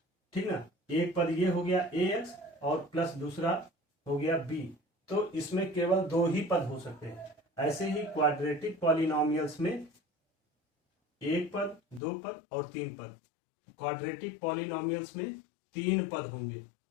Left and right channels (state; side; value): drops out; right; at 12.0 s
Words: ठीक ना। एक पद ये हो गया ए एक्स और प्लस दूसरा हो गया बी, तो इसमें केवल 2 ही पद हो सकते हैं। ऐसे ही क्वाड्रेटिक पॉलिनोमियल्स में 1 पद, 2 पद और 3 पद। क्वाड्रेटिक पॉलिनोमियल्स में 3 पद होंगे।